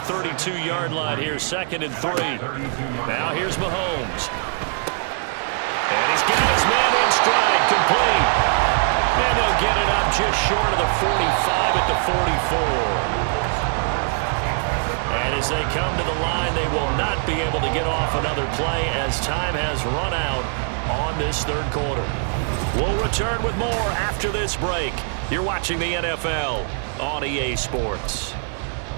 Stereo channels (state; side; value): silent; left; 60 dB below the other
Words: 32-yard line here, 2nd and 3. Now here's Mahomes. And he's got his man in stride, complete. And they'll get it up just short of the 45 at the 44. And as they come to the line, they will not be able to get off another play as time has run out on this third quarter. We'll return with more after this break. You're watching the NFL on EA Sports.